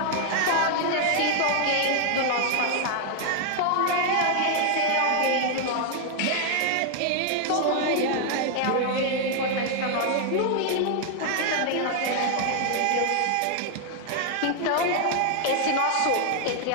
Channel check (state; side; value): different; both; correlation 0.00